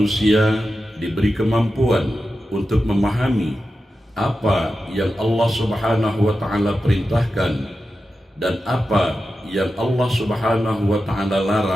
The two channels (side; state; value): both; normal; correlation 0.91